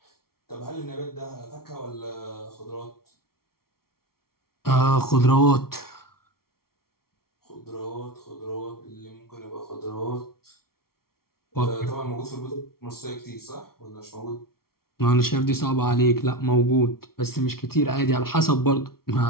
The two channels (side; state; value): right; late; 0.94 ms